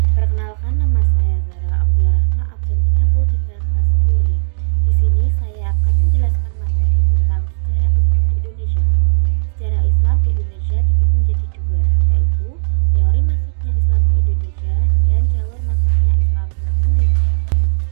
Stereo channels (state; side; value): silent; left; 62 dB below the other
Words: Perkenalkan, nama saya Zara Abdul Rahma, absen 33 kelas 10I. Di sini saya akan menjelaskan materi tentang sejarah Islam di Indonesia. Sejarah Islam di Indonesia dibagi menjadi dua, yaitu teori masuknya Islam ke Indonesia dan jalur masuknya Islam ke Indonesia.